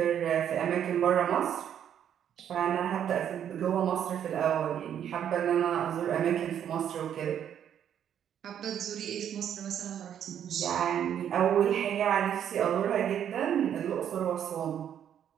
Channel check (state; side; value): quieter; left; 9.4 dB